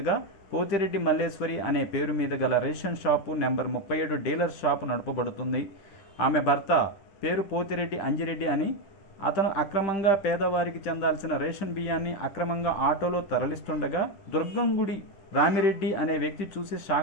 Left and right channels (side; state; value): right; late; 10 ms